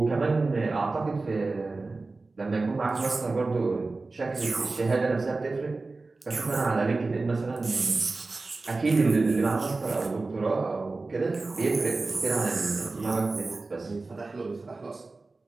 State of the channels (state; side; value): quieter; left; 3.5 dB